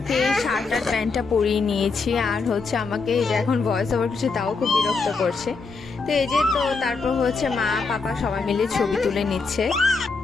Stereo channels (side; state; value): right; quieter; 4.4 dB